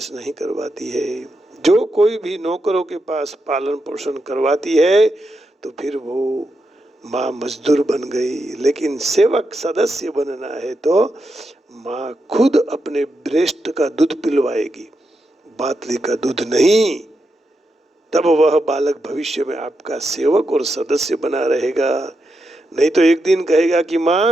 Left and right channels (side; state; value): both; normal; correlation 0.85